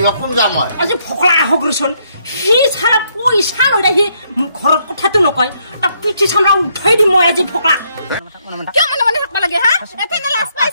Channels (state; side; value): inverted; both; correlation -0.73